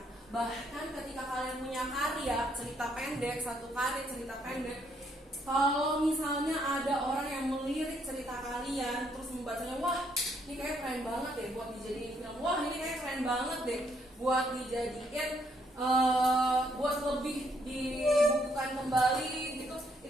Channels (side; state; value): both; normal; correlation 0.71